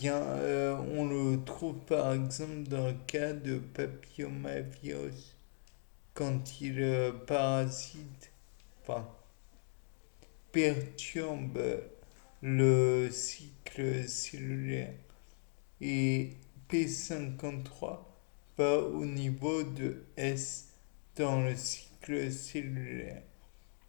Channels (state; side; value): silent; right; 52 dB below the other